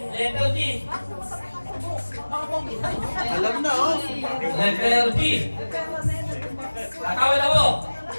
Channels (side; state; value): both; inverted; correlation -1.00